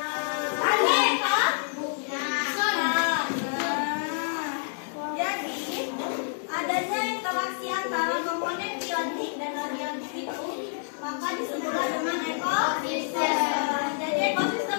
maka disebutlah dengan ekosistem. Jadi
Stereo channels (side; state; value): right; silent; digital silence